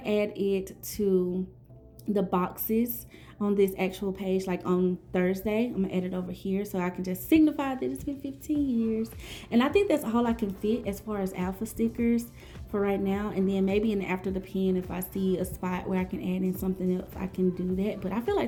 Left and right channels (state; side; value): identical; both; correlation 1.00